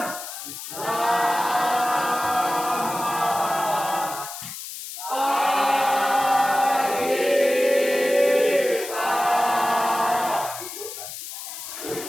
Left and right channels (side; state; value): left; noise; hiss, 10 dB below the sound